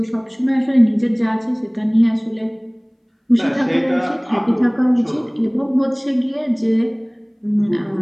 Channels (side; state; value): both; identical; correlation 1.00